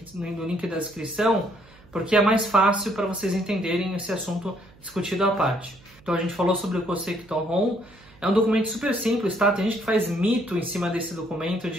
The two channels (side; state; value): right; noise; hum, 26 dB below the sound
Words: no link da descrição, porque é mais fácil para vocês entenderem esse assunto discutido à parte. Então, a gente falou sobre o Kosekito-hon, é um documento super simples, tá? Tem gente que faz mito em cima desse documento